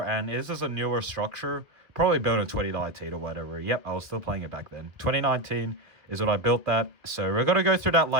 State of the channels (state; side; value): late; left; 2.2 ms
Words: and this is a newer structure. Probably built in 2019 or whatever. Yep, I was still playing it back then. 2019 is when I built that. So we're going to go through that